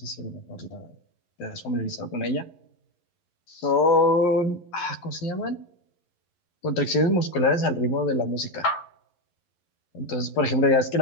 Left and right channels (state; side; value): late; right; 11 ms